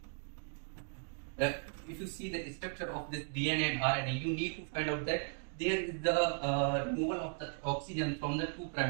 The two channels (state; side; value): silent; left; 53 dB below the other